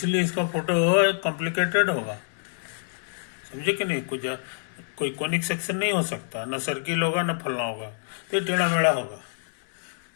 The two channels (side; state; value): right; silent; digital silence